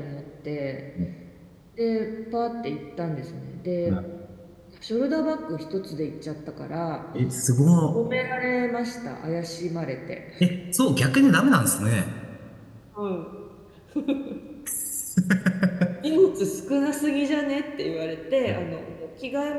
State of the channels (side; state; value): both; identical; correlation 1.00